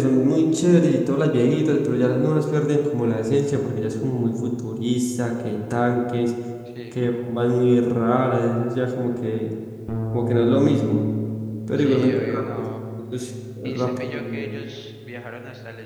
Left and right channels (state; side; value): identical; both; correlation 1.00